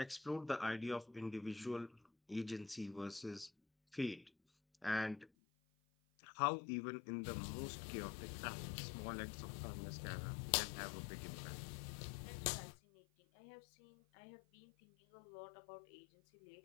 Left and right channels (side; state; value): right; drops out; at 5.3 s